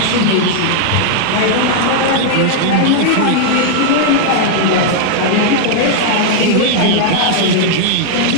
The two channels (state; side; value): different; both; correlation -0.01